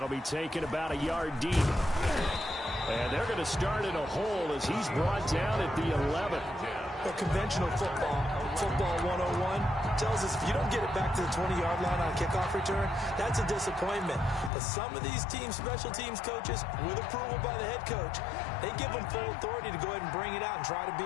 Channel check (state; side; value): drops out; right; at 14.5 s